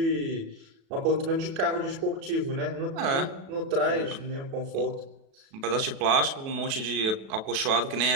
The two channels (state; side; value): late; left; 36 ms